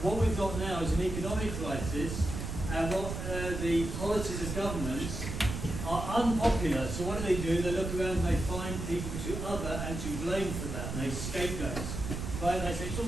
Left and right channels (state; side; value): noise; right; rumble, 5 dB below the sound